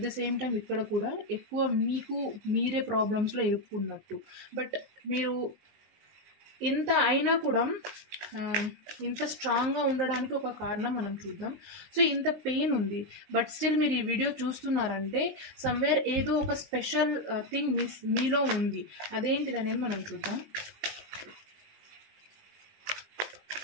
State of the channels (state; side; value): late; left; 19 ms